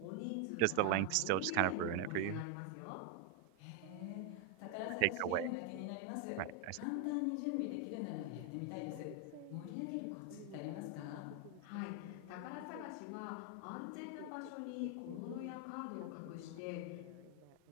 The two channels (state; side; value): different; both; correlation 0.01